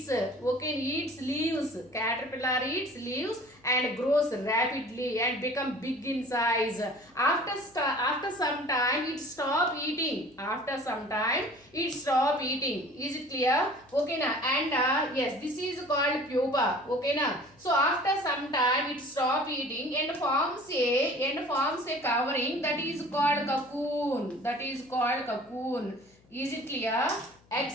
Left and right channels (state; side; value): noise; left; hum, 30 dB below the sound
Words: Okay, eats leaves. Caterpillar eats leaves and grows rapidly and become big in size. After some time, it stop eating. After some time, it stop eating. Is it clear? Okay, na, and yes, this is called pupa. Okay, na. So after some time, it stop eating and forms a covering that is called cocoon. That is called cocoon. Is it clear? Eggs